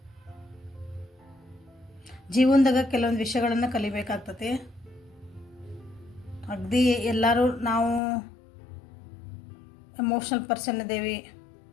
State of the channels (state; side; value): drops out; right; at 8.0 s